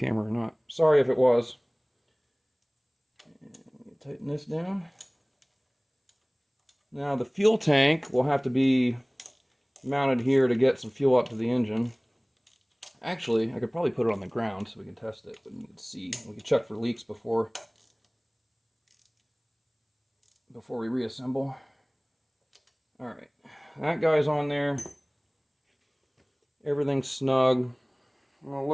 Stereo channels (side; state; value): both; identical; correlation 1.00